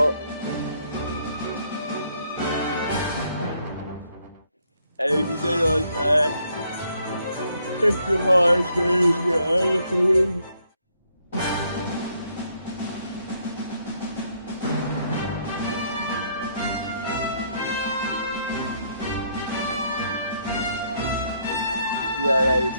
everything on that. It's a hard thing, honestly. Yeah, that is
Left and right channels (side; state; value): both; inverted; correlation -0.71